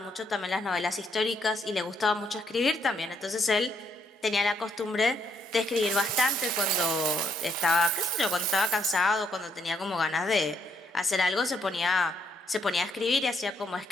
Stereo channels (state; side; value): normal; both; correlation 0.71